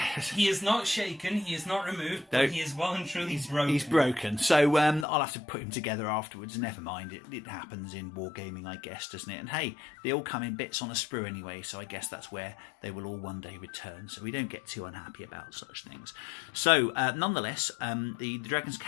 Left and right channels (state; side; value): drops out; right; at 5.1 s